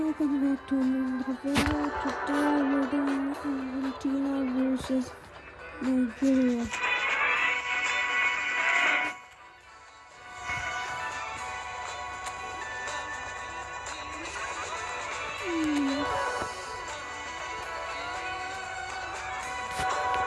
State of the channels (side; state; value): both; identical; correlation 1.00